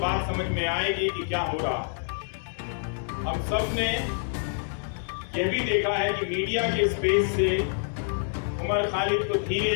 समझ में आएगी कि क्या हो रहा। हम सब ने यह भी देखा है कि मीडिया के स्पेस से उमर खालिद को धीरे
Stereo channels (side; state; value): right; silent; digital silence